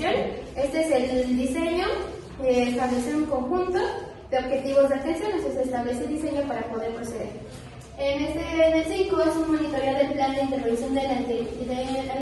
Este es el diseño, establecer un conjunto de objetivos de atención, entonces se establece el diseño para poder proceder. En el 5 es un monitoreo del plan de intervención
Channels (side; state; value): both; identical; correlation 1.00